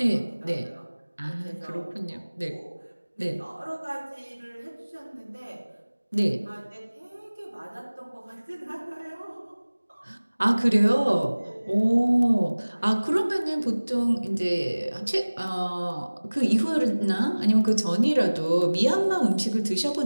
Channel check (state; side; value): inverted; both; correlation -1.00